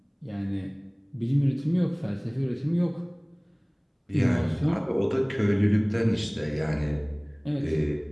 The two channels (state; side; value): identical; both; correlation 1.00